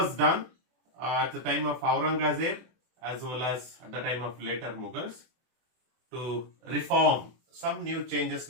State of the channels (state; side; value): late; left; 24 ms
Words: done at the time of Aurangzeb as well as at the time of later Mughals to reform. Some new changes